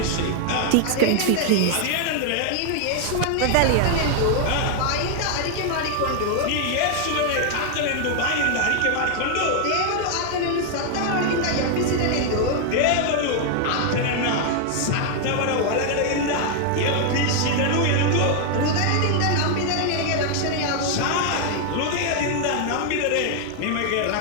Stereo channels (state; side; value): different; both; correlation 0.00